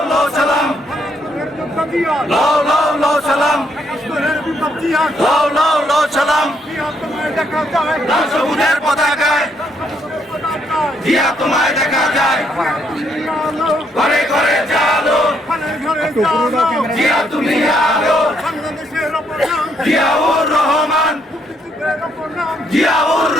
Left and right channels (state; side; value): normal; both; correlation 0.72